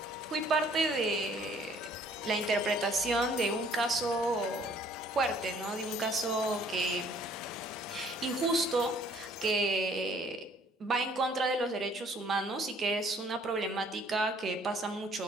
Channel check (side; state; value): both; normal; correlation 0.59